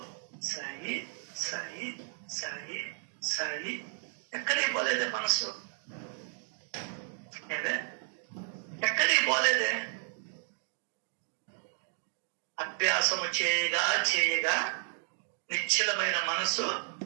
సాయి సాయి సాయి సాయి. ఎక్కడికి పోలేదే మనసు, ఏదే ఎక్కడికి పోలేదే. అభ్యాసము చేయగా చేయగా నిశ్చలమైన మనసు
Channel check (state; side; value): silent; left; digital silence